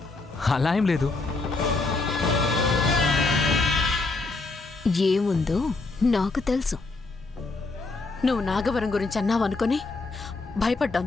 అలా ఏం లేదు. ఏముందో నాకు తెలుసు. నువ్వు నాగవరం గురించి అన్నావనుకొని భయపడ్డాం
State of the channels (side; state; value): right; quieter; 3.5 dB